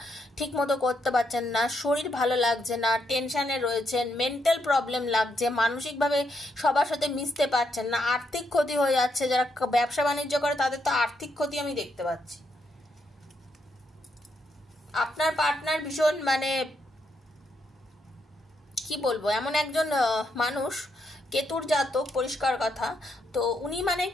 ঠিক মতো করতে পারছেন না, শরীর ভালো লাগছে না, টেনশনে রয়েছেন, মেন্টাল প্রবলেম লাগছে, মানসিকভাবে সবার সাথে মিশতে পারছেন না, আর্থিক ক্ষতি হয়ে যাচ্ছে। যারা ব্যবসা বাণিজ্য করে তাদের তো আর্থিক ক্ষতি আমি দেখতে পাচ্ছি। আপনার পার্টনার ভীষণ মানে কি বলবো, এমন একজন মানুষ, কেতুর জাতক, পরিষ্কার কথা। তো উনি মানে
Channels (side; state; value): both; normal; correlation 0.79